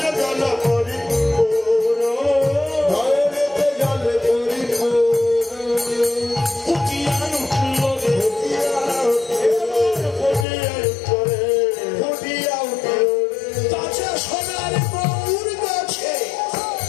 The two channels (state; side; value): drops out; right; at 10.5 s